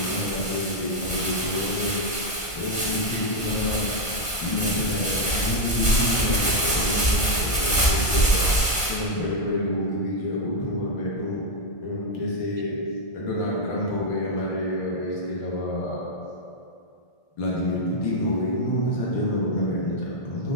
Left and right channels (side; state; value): right; late; 1.4 ms